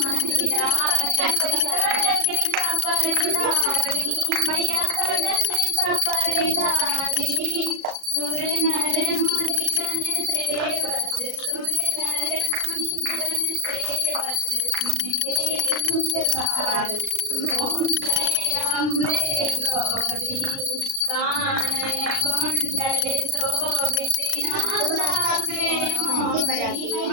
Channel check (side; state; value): left; late; 36 ms